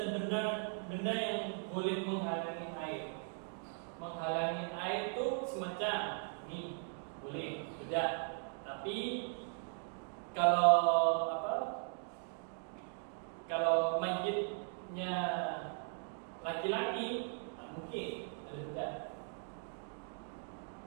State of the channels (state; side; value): silent; left; 52 dB below the other